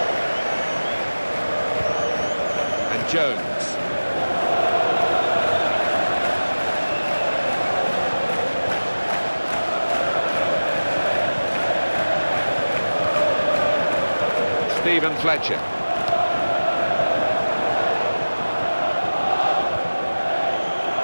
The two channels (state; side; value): inverted; both; correlation -1.00